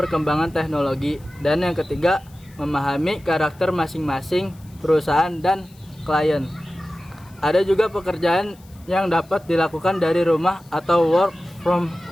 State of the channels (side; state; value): left; noise; hiss, 28 dB below the sound